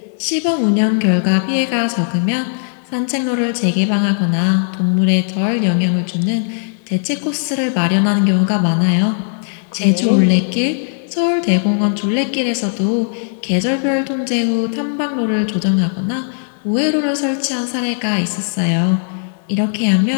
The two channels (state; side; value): silent; right; 61 dB below the other